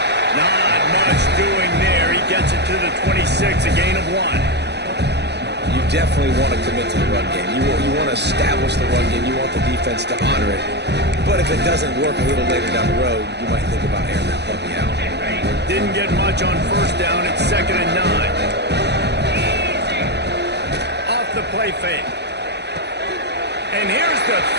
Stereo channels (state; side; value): late; left; 0.49 ms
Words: Not much doing there. He gets it to the 26, a gain of 1. You definitely want to commit to the run game. You want to establish the run game. You want the defense to honor it. But if it doesn't work a little later down the road, you might think about airing that puppy out. Didn't get much on first down. It's 2nd and 9. Off the play fake. And here's the